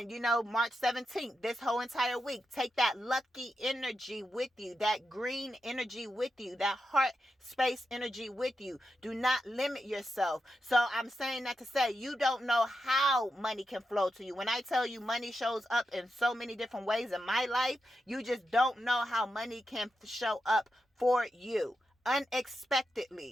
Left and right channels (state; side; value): normal; both; correlation 0.87